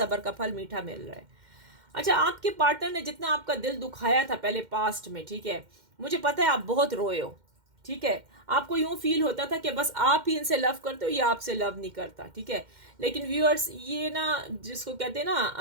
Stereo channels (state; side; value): late; left; 2.1 ms